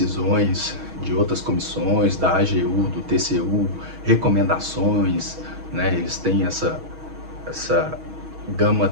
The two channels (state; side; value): late; left; 6.3 ms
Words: de outras comissões, da AGU, do TCU, recomendações, né? Eles têm essa gama